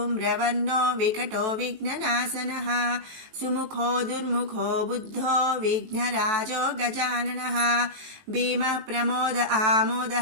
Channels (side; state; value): left; late; 18 ms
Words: వికటో విఘ్ననాశనః సుముఖో దుర్ముఖో బుద్ధో విఘ్నరాజో గజాననః భీమః ప్రమోద